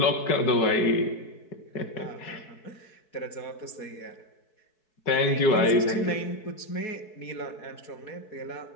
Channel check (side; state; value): right; late; 4.6 ms